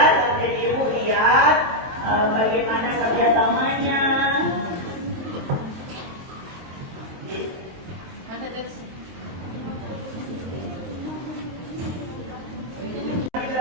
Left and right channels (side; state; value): left; late; 23 ms